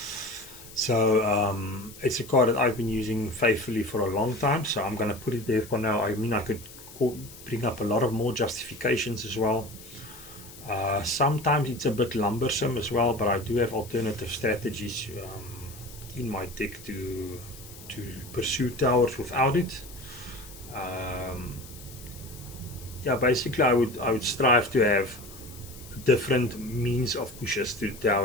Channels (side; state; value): left; noise; hiss, 18 dB below the sound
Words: So it's a card that I've been using faithfully for a long time, so I'm going to put it there for now. I mean, I could bring up a lot of more justifications as well. Sometimes it's a bit lumbersome as well, but I do have alternative strategies in my deck to pursue towers without it. Yeah, basically I would strive to have different means of pushes to the